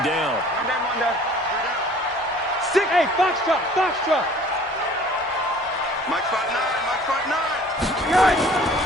down. Hey, Foxtrot, Foxtrot. Mike spot 9.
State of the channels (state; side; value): normal; both; correlation 0.50